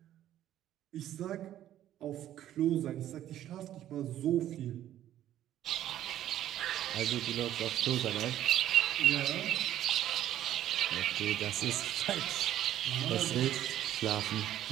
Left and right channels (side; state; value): left; quieter; 12.2 dB